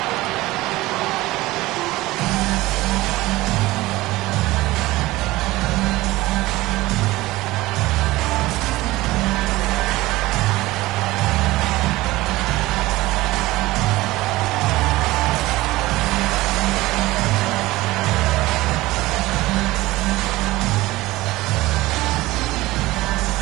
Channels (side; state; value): left; quieter; 18.7 dB